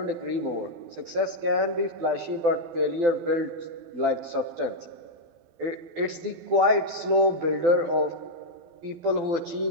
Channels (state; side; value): late; left; 12 ms